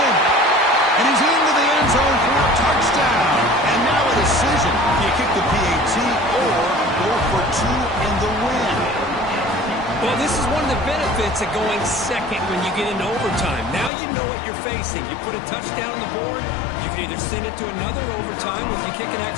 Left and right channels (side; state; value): right; drops out; at 13.9 s